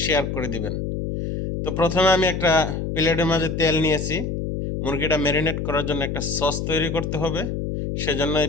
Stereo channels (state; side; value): noise; left; hum, 3 dB below the sound